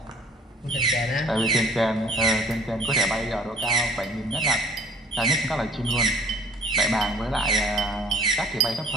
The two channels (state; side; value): normal; both; correlation 0.52